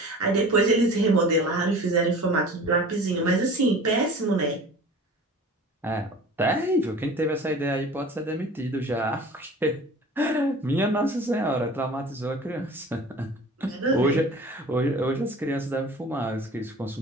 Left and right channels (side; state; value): both; normal; correlation 0.41